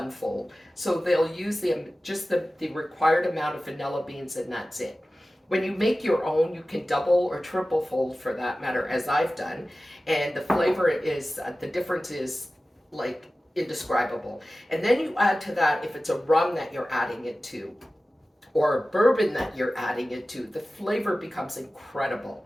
fold. So they'll use just the required amount of vanilla beans, and that's it. When you make your own, you can double or triple fold, for that matter, as I've done. And the flavor is, the difference is like indescribable. And then you add to that, if it's a rum that you're adding it to, or bourbon that you're adding it to, the flavor becomes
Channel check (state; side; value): normal; both; correlation 0.96